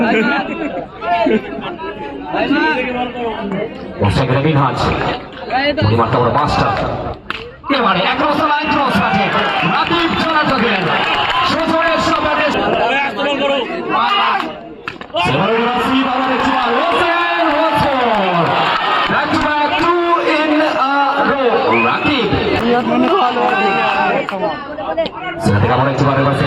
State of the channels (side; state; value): both; identical; correlation 1.00